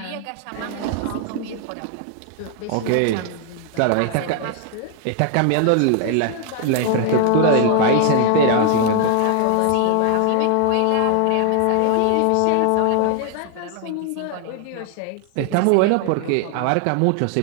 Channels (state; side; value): different; both; correlation 0.00